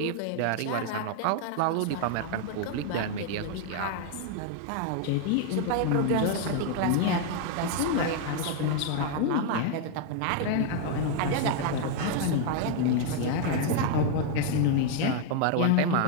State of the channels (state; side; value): different; both; correlation 0.00